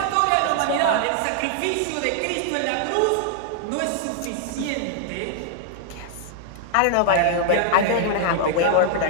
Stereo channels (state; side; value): different; both; correlation -0.01